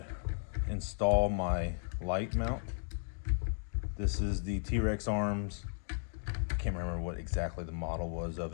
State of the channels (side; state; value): right; silent; digital silence